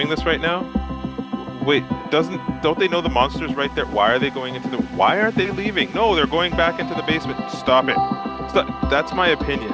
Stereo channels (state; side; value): identical; both; correlation 1.00